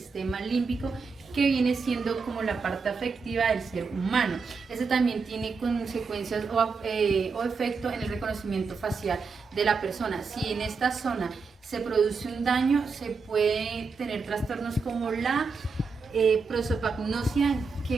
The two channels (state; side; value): quieter; left; 4.8 dB